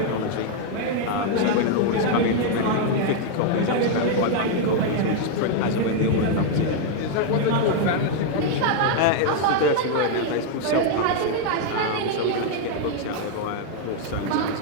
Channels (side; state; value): both; different; correlation 0.00